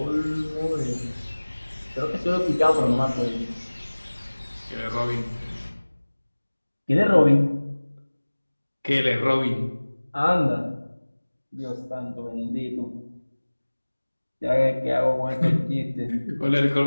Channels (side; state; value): both; inverted; correlation -1.00